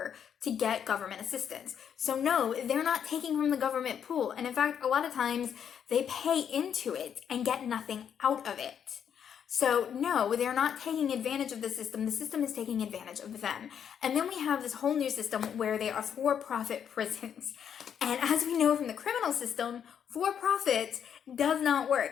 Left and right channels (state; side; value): quieter; right; 8.3 dB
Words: to get government assistance. So no, they're not taking from the government pool. And in fact, a lot of times they pay into it and get nothing out of it. So no, they're not taking advantage of the system. The system is taking advantage of them. And then we have this whole new system where they are for-profit prisons. And as we know from the criminal system, for-profit does not